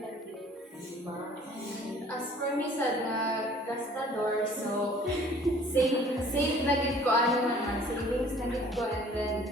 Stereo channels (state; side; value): normal; both; correlation 0.53